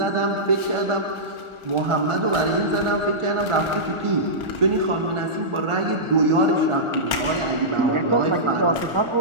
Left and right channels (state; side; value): late; left; 1.4 ms